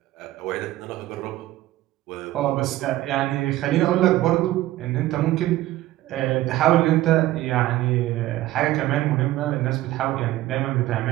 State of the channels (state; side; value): quieter; left; 15.6 dB